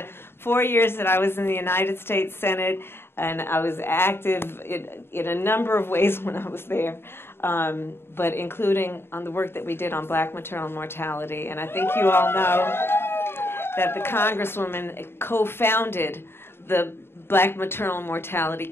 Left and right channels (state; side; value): late; right; 0.11 ms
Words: 4 years that I was in the United States Senate, and I was active in a number of ways when I was there, but including on the work that we did on black maternal mortality. And I think you all know that the Congresswoman co-founded the Black Maternal Mortality